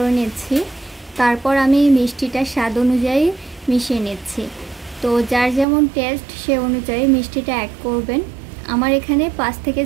নিচ্ছি। তারপর আমি মিষ্টিটা স্বাদ অনুযায়ী মিশিয়ে নিচ্ছি। তো যার যেমন টেস্ট সে অনুযায়ী মিষ্টিটা অ্যাড করবেন। আমার এখানে 5 থেকে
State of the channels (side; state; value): left; drops out; at 5.7 s